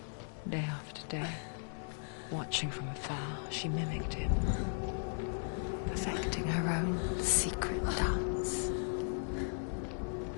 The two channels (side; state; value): right; silent; digital silence